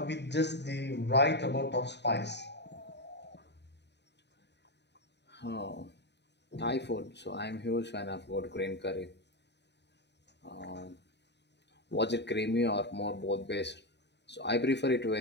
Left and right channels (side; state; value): right; late; 0.50 ms